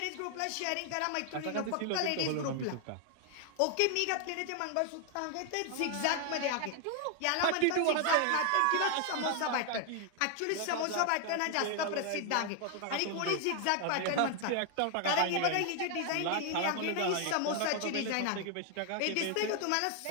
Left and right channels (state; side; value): different; both; correlation 0.00